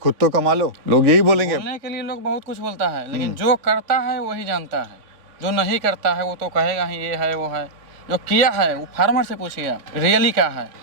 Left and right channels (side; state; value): left; late; 3.5 ms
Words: तो कमा लो, लोग यही बोलेंगे। बोलने के लिए लोग बहुत कुछ बोलता है, लेकिन जो करता है वही जानता है। जो नहीं करता है वो तो कहेगा ही ये है वो है। जो किया है वो फार्मर से पूछिए आप, रियली क्या है।